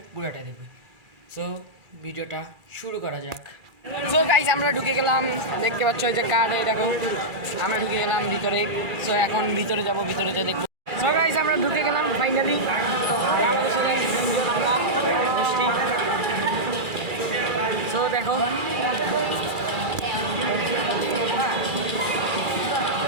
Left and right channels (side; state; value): left; late; 2.4 ms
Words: পুরাটা দেখবে। সো ভিডিওটা শুরু করা যাক। সো গাইস, আমরা ঢুকে গেলাম, দেখতে পাচ্ছ এই যে কার্ড, দেখো আমরা ঢুকে গেলাম ভিতরে। সো এখন ভিতরে যাব, ভিতরে যে দেখবো। সো গাইস, আমরা ঢুকে গেলাম ফাইনালি। সো দেখো,